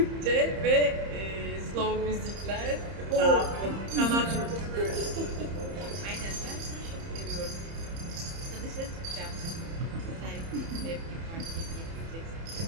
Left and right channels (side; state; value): left; late; 30 ms